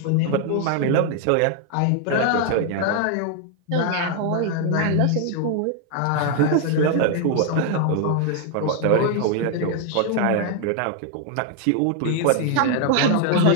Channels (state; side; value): different; both; correlation 0.00